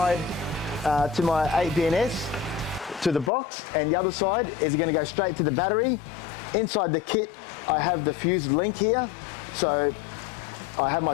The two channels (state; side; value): drops out; right; at 3.3 s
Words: to my 8BNS to the box, and the other side is going to go straight to the battery. Inside the kit, I have the fuse link here. So I have my